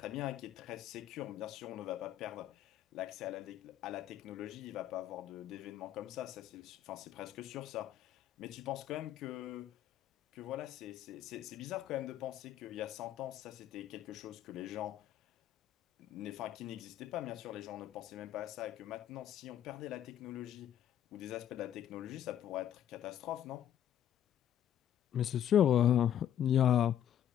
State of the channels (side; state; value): right; quieter; 10.6 dB